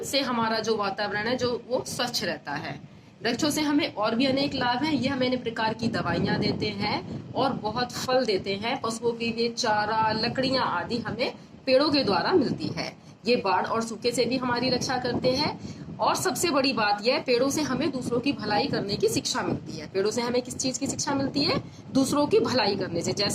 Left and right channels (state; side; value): identical; both; correlation 1.00